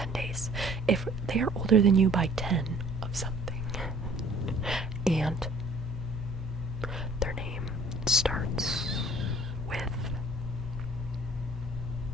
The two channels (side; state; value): both; normal; correlation 0.53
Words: days. If they are older than you by 10 of something, and their name starts with